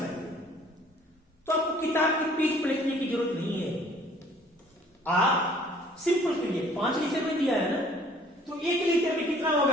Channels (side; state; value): both; normal; correlation 0.55